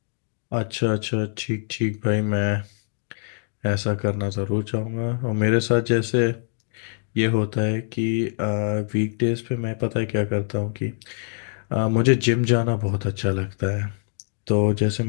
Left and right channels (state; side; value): silent; right; digital silence